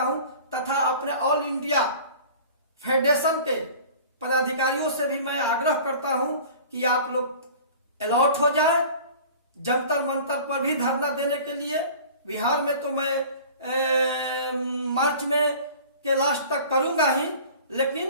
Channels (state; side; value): inverted; both; correlation -0.43